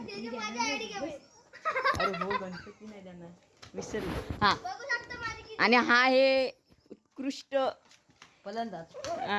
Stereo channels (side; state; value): both; identical; correlation 1.00